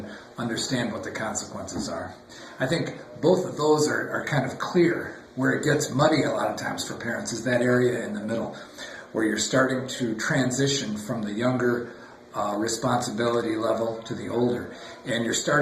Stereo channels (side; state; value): both; identical; correlation 1.00